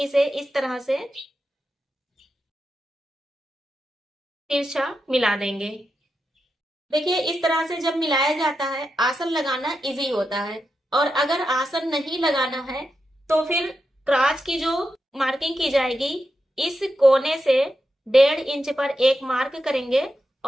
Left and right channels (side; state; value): both; normal; correlation 0.88